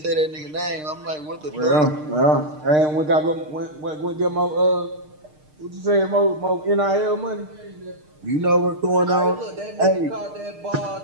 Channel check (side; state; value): left; late; 6.6 ms